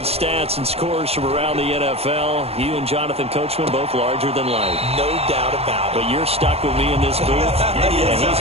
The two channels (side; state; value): left; late; 0.29 ms